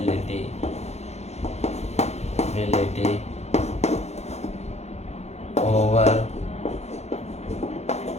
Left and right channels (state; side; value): late; right; 0.32 ms